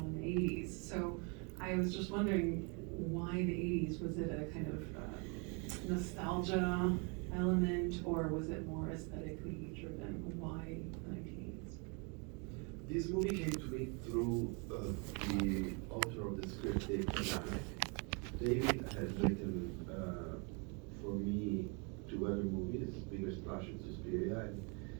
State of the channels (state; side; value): quieter; left; 33.8 dB